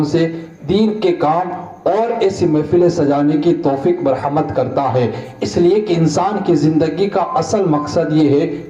سے دین کے کام اور ایسی محفلیں سجانے کی توفیق مرحمت کرتا ہے۔ اس لیے کہ انسان کی زندگی کا اصل مقصد یہ ہے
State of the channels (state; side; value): identical; both; correlation 1.00